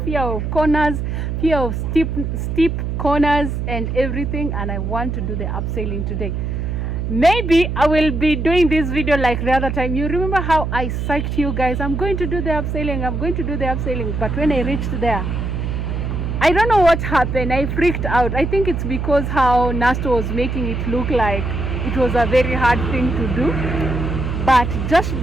fear of corners, fear of steep corners and everything. And I want to do the abseiling today. Maybe I will be doing this video like the other time. You remember how I psyched you guys? I'm going to do the abseiling. But when I reached there, I don't know what happened. I freaked out. I think it's because how Nasto was making it look like it was a very hard thing to do. But Josh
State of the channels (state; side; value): noise; right; hum, 2 dB below the sound